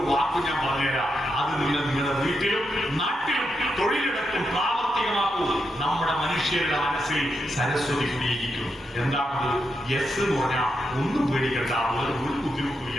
വാക്ക് ഞാൻ പറഞ്ഞുതരാം. അത് നിങ്ങളുടെ വീട്ടിലും നാട്ടിലും തൊഴിലിടത്തും പ്രാവർത്തികമാക്കൂ. നമ്മുടെ മനുഷ്യരുടെ മനസ്സിൽ സരസ്വതി കുടിയിരിക്കും. എന്താണത്? എസ് എന്ന് പറഞ്ഞാൽ ഒന്നും പേടിക്കണ്ട, ഒരു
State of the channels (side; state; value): both; normal; correlation 0.83